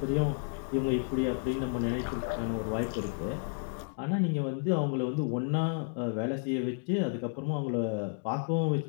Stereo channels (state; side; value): silent; right; 57 dB below the other